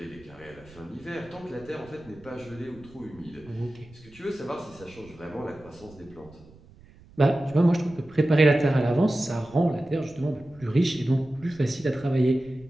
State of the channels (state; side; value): noise; right; rumble, 23 dB below the sound